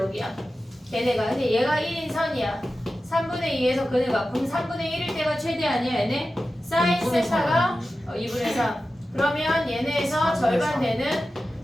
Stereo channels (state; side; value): normal; both; correlation 0.93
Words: 걔네가. 근데 얘가 1인 선이야. 3분의 2에서 근을 갖고 그럼 3분의 1일 때가 최대 아니야 얘네? 사인 세타가 2분의 3. 그러면 얘네에서 절반 되는